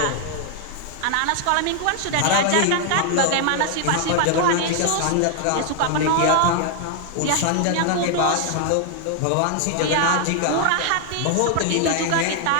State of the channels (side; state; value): both; different; correlation 0.00